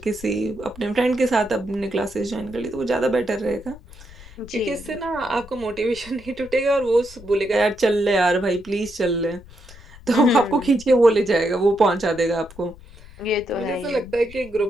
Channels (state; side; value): noise; left; rumble, 19 dB below the sound